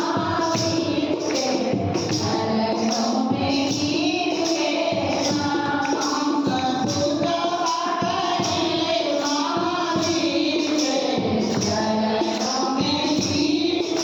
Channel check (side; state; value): both; identical; correlation 1.00